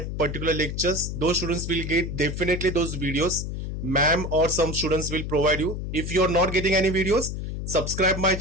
particular lectures, those students will get definitely those videos. Ma'am or some students will provide you. If you are not getting any videos, subscribe my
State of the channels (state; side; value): noise; left; hum, 5 dB below the sound